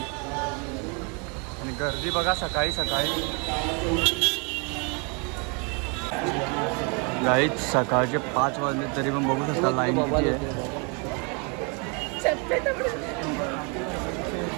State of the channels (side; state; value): left; quieter; 34.2 dB